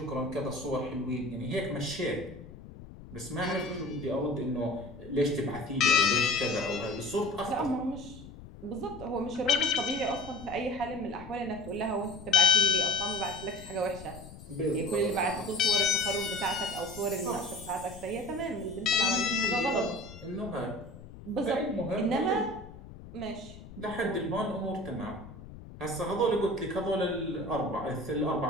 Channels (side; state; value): left; noise; rumble, 16 dB below the sound